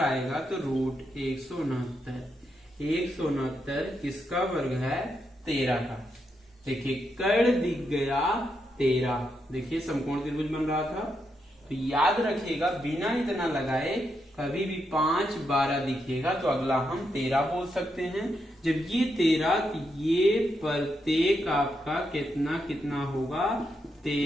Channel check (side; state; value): both; normal; correlation 0.82